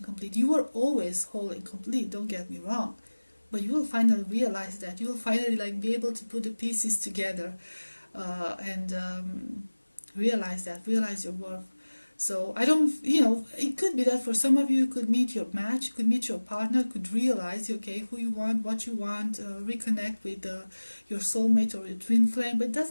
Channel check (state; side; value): inverted; both; correlation -1.00